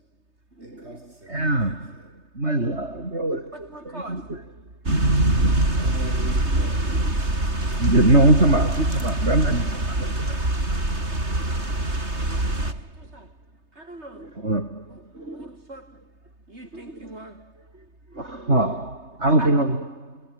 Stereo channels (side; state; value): left; late; 3.3 ms